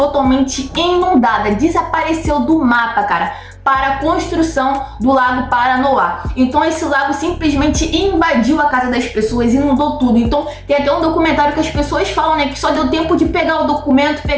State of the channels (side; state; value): both; identical; correlation 1.00